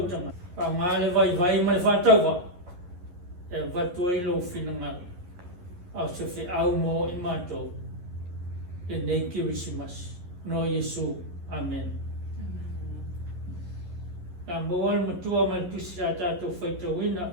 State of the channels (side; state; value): left; late; 11 ms